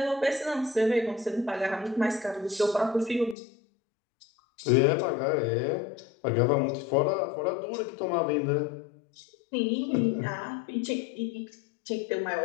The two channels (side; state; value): right; drops out; at 3.4 s